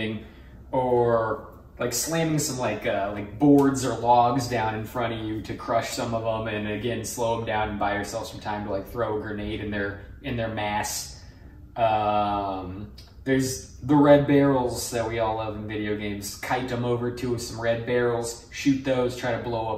or like slamming some like boards or logs down in front of you to crush some of them, and again slow them down and buy yourself some time to like throw a grenade in their mass. There's the red barrels that we all love in video games. Kite them over to some red barrels, shoot those, try to blow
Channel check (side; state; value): both; identical; correlation 1.00